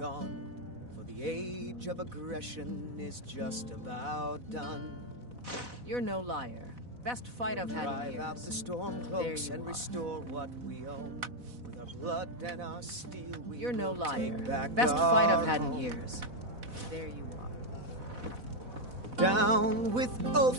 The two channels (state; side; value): late; left; 4.1 ms